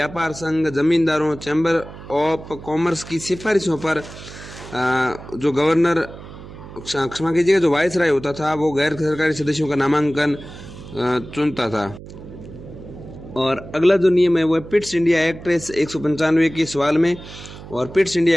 संघ, जमींदारों, चैम्बर ऑफ कॉमर्स की सिफारिशों पर जो गवर्नर, क्षमा कीजिएगा, जो वायसराय होता था वो गैर सरकारी सदस्यों का नामांकन चुनता था। और अगला जो नियम है वो है पिट्स इंडिया एक्ट 195 के सवाल में। और पिट्स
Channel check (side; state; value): right; noise; hum, 15 dB below the sound